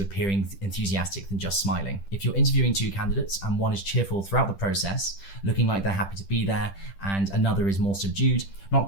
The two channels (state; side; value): late; right; 10 ms